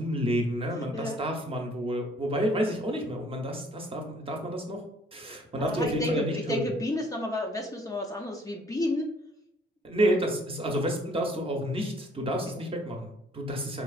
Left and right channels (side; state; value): both; normal; correlation 0.60